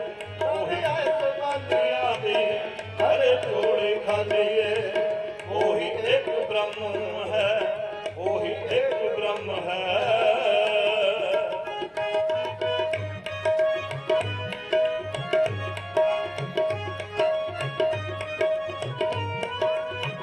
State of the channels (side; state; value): both; identical; correlation 1.00